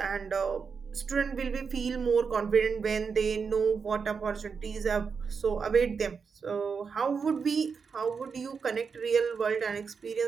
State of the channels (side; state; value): left; quieter; 5.7 dB